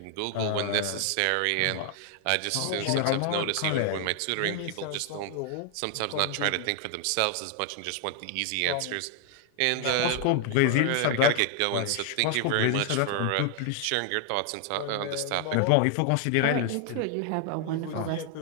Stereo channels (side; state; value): both; different; correlation 0.00